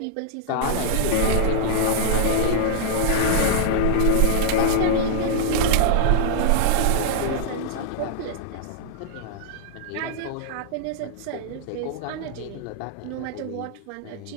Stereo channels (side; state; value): both; different; correlation -0.01